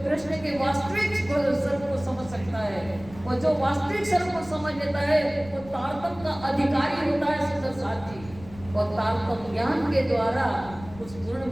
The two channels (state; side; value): noise; left; rumble, 18 dB below the sound